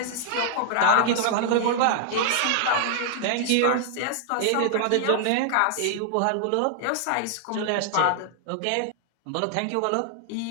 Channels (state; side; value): different; both; correlation -0.01